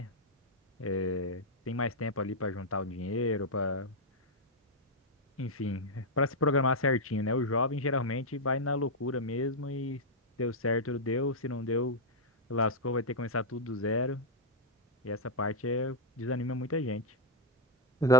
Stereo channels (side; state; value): both; normal; correlation -0.02